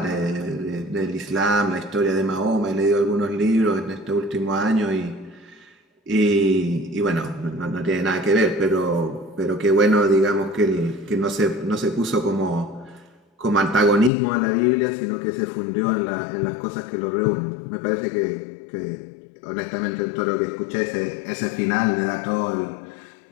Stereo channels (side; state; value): right; drops out; at 14.1 s